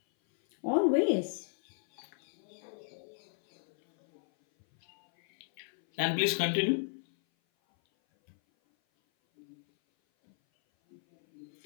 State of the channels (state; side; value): silent; right; 55 dB below the other